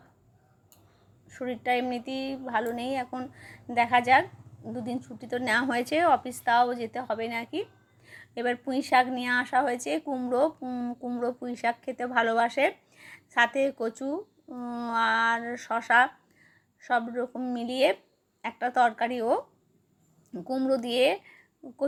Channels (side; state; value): both; identical; correlation 1.00